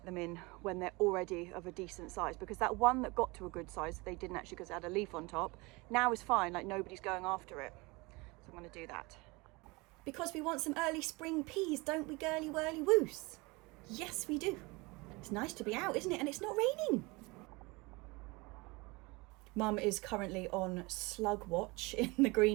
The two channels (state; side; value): quieter; left; 25.1 dB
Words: them in when they're already of a decent size, because that one that got to a good size, they didn't actually because it had a leaf on top, now is fine, like nobody's going after it. So I'm going to do that. Because we want some early spring peas, don't we, girly whirly woos? Yes, we do. It's nice to be out, isn't it? And it's not raining. Mum is currently on slug watch in the